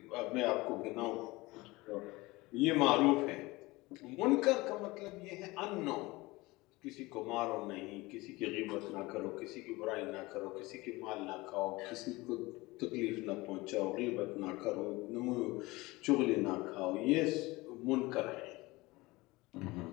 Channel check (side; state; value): right; quieter; 21.6 dB